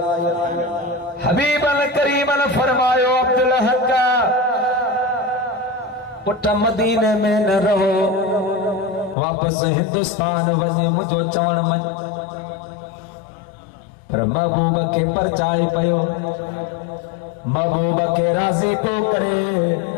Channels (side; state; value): right; drops out; at 9.2 s